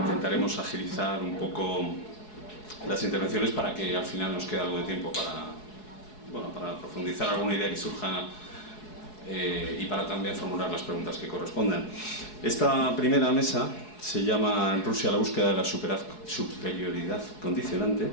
agilizar un poco las intervenciones para que al final nos quede algo de tiempo para profundizar alguna idea que surja y para también formular las preguntas que correspondan. Esta primera mesa se llama Rusia, la búsqueda de la superioridad condicionante.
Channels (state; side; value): late; right; 4.7 ms